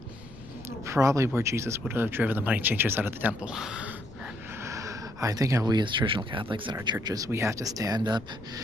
probably where Jesus would have driven the money changers out of the temple. I think we as traditional Catholics in our churches, we have to stand up,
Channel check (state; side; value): noise; left; rumble, 19 dB below the sound